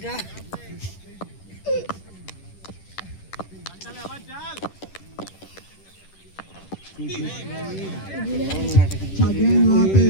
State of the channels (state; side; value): late; right; 10 ms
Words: अच्छा गेंद वहां पे